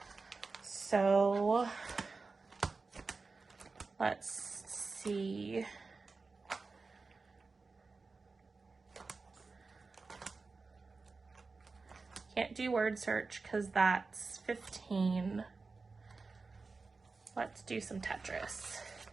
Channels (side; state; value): left; quieter; 4.1 dB